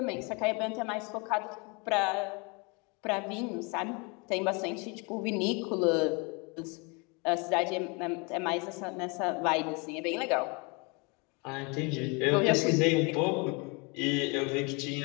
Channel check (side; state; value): right; quieter; 30.5 dB